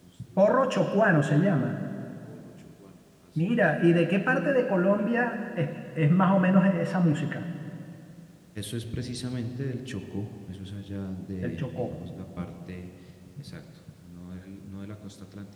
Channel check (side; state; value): both; identical; correlation 1.00